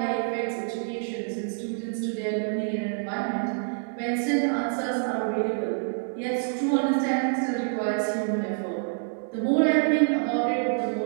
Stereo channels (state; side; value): silent; left; digital silence